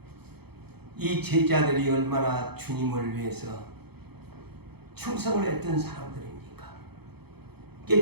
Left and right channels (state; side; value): late; left; 0.97 ms